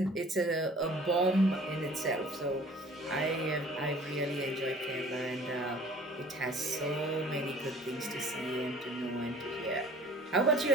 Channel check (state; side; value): normal; both; correlation 0.50